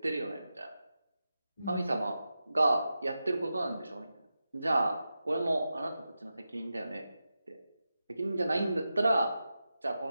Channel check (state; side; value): inverted; both; correlation -0.91